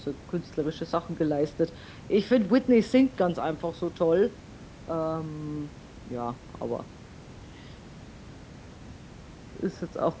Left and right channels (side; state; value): both; identical; correlation 1.00